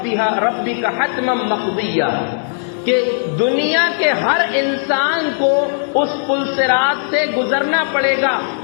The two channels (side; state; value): right; silent; 58 dB below the other